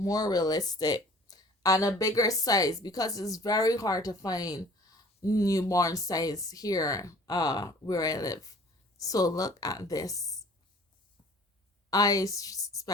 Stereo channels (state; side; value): normal; both; correlation 0.50